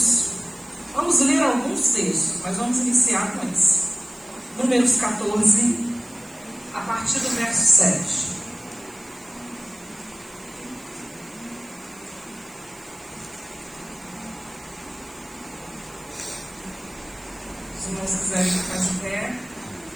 Vamos ler alguns textos, mas vamos iniciar com esse. Números 14, a partir do verso 7. Se os irmãos quiserem ficar de pé,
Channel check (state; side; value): noise; right; hiss, 23 dB below the sound